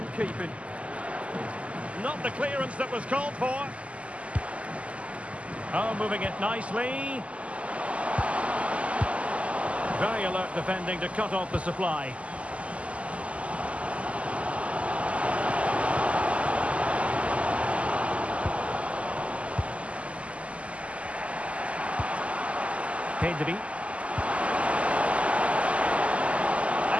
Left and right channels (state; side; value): late; left; 0.062 ms